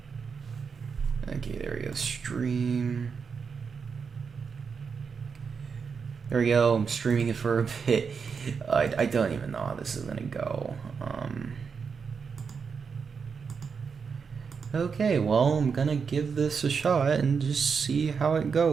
Okay, there we go, stream. There we go, I'm streaming it for a bit. I don't even know how this is gonna go. Okay, well, I'm gonna give this a shot and just see how it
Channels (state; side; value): quieter; left; 5.8 dB